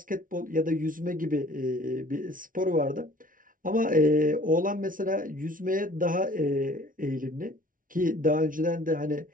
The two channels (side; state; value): left; late; 0.39 ms